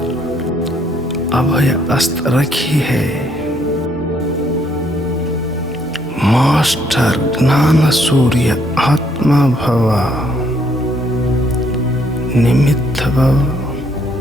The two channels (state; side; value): normal; both; correlation 0.69